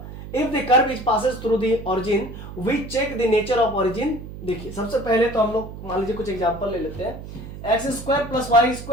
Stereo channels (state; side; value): noise; right; hum, 12 dB below the sound